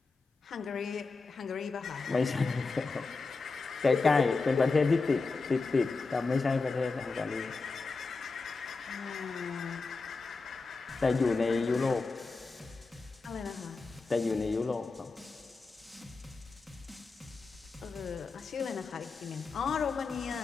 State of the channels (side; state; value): right; quieter; 4.1 dB